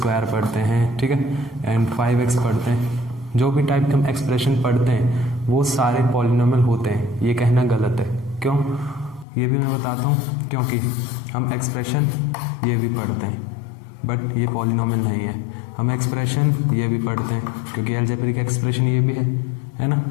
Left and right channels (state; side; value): drops out; right; at 9.2 s